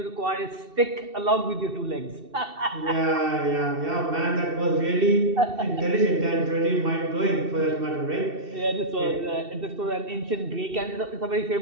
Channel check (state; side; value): late; left; 2.7 ms